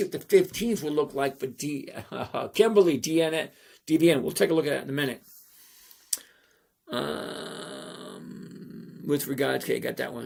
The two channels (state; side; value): identical; both; correlation 1.00